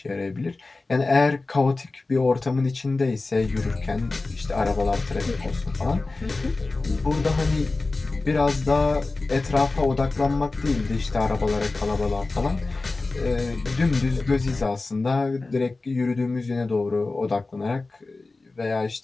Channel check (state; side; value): quieter; right; 3.5 dB